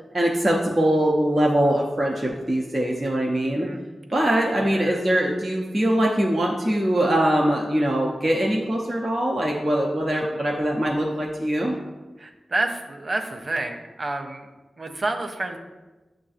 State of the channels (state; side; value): normal; both; correlation 0.93